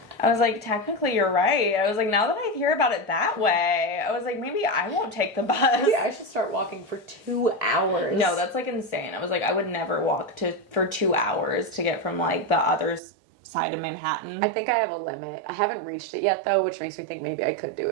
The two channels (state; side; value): drops out; left; at 13.0 s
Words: I was like, technically you're right. I was like, now that I hear about it that way, I was like, maybe I won't take the bus. Yeah, I should start walking for 2 hours. No, that's like insane. I was like, I would never walk for 2 hours to get from like the other side of Manhattan. I think I have a limit. I haven't reached it yet though, which makes me think maybe I could do